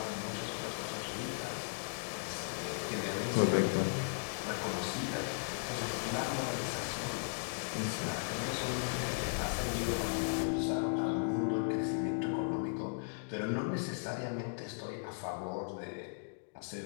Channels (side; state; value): right; silent; digital silence